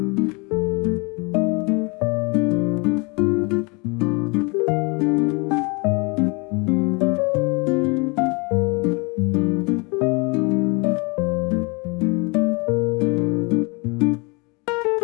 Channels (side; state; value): right; quieter; 29.9 dB